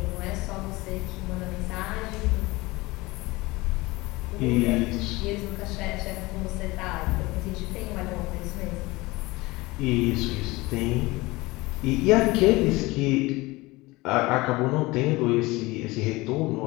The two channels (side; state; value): right; quieter; 21.6 dB